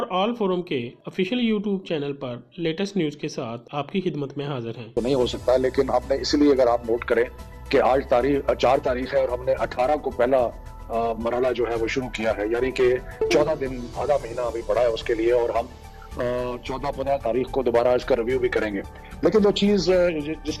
ऑल फोरम के ऑफिशियल यूट्यूब चैनल पर लेटेस्ट न्यूज़ के साथ आपकी खिदमत में हाजिर हैं। तो नहीं हो सकता, लेकिन हमने इसलिए, अगर आप नोट करें कि आज 4 तारीख है और हमने 18 को पहला मरहला जो है वो शुरू किया है, यानी कि 14 दिन, आधा महीना अभी पड़ा है उसके लिए, और हम 14-15 तारीख को दोबारा इसका रिव्यू भी करेंगे। लेकिन जो चीज़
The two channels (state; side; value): identical; both; correlation 1.00